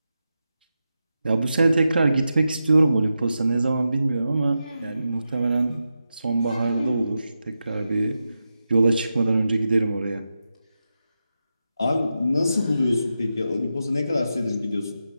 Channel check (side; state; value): both; inverted; correlation -0.90